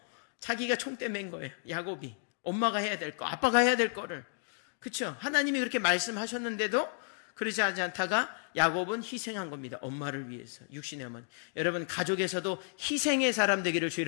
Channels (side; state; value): right; silent; 55 dB below the other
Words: 자기가 총대 맨 거예요. 야곱이. 엄마가 해야 될 거, 아빠가 해야 될 거를. 그렇죠? 하나님이 그렇게 말씀하셨는데도 그러지 않다가 야곱은 희생한 겁니다. 엄마를 위해서. 육신의 어머니. 여러분 가족에서도 희생의 사람 되기를 주